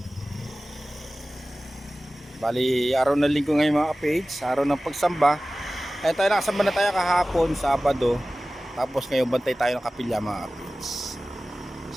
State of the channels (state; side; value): normal; both; correlation 0.96